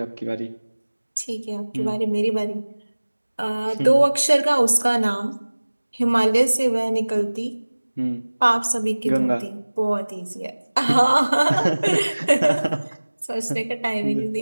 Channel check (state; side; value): inverted; both; correlation -1.00